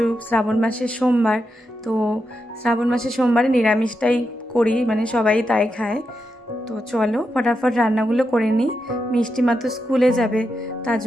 শ্রাবণ মাসের সোমবার। তো শ্রাবণ মাসের সোমবারে নিরামিষটাই করি, মানে সবাই তাই খায়। তো চলো ফটাফট রান্নাগুলো করে নিই। মিষ্টি মা তো স্কুলে যাবে, তার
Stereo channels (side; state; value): both; normal; correlation 0.86